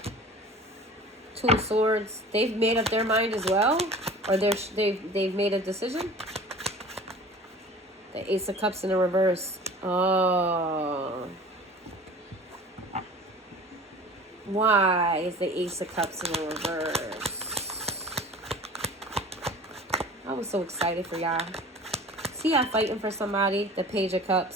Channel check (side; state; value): both; normal; correlation 0.42